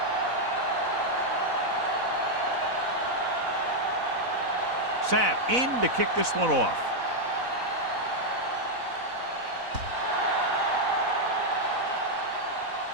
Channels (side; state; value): left; late; 4.0 ms